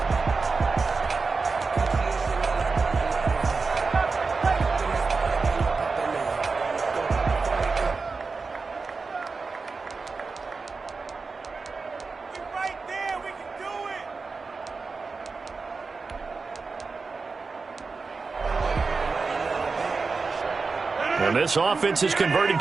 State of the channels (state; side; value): quieter; left; 4.4 dB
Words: And this offense has converted